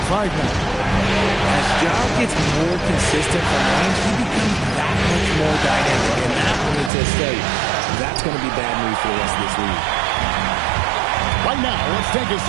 5 now. As Ja gets more consistent from range, he becomes that much more dynamic. And that, let me just tell you, that's going to be bad news for the rest of this league. Right now, let's take a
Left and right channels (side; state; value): left; drops out; at 6.9 s